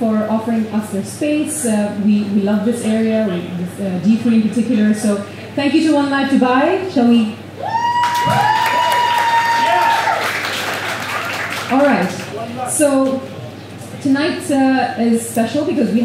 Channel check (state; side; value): identical; both; correlation 1.00